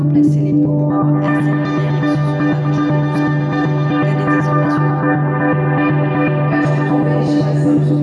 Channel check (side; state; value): both; identical; correlation 1.00